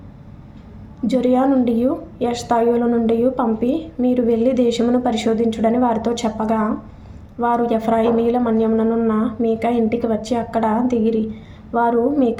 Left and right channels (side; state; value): both; identical; correlation 1.00